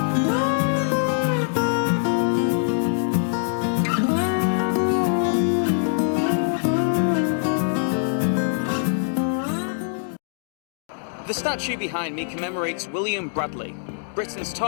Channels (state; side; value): silent; right; digital silence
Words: The statue behind me commemorates William Bradley, Britain's